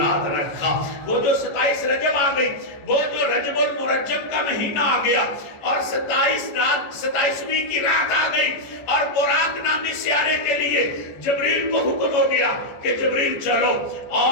رکھا۔ وہ جو 27 رجب آ گئی، وہ جو رجب المرجب کا مہینہ آ گیا اور 27ویں کی رات آ گئی اور براق نامی سیارے کے لیے جبریل کو حکم ہو گیا کہ جبریل چلو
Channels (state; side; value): late; right; 14 ms